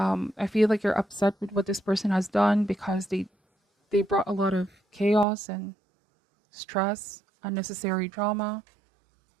feel like you're upset with what this person has done because they brought a lot of chaos and stress, unnecessary drama.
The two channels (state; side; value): drops out; left; at 5.2 s